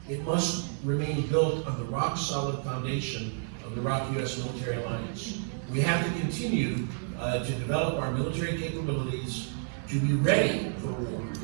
it must remain built on the rock-solid foundation of the ROK-US military alliance. We have to continue to develop our military capabilities to be ready for war.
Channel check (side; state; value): left; silent; 58 dB below the other